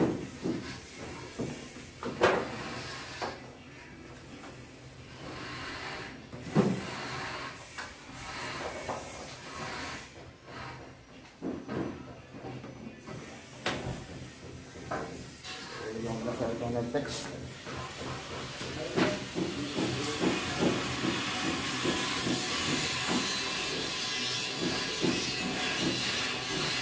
Yung nasa itong nag-text.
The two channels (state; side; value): identical; both; correlation 1.00